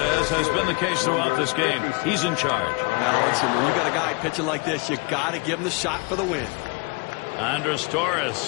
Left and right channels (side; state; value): right; quieter; 29.9 dB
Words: has been the case throughout this game, he's in charge. Now, listen, when you got a guy pitching like this, you got to give him the shot for the win. Andres